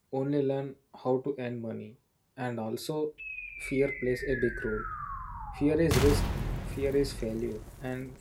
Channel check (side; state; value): both; identical; correlation 1.00